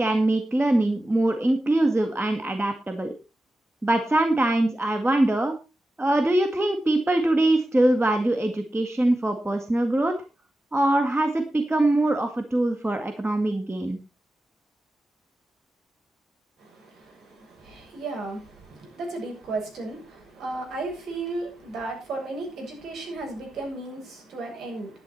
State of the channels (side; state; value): both; normal; correlation 0.92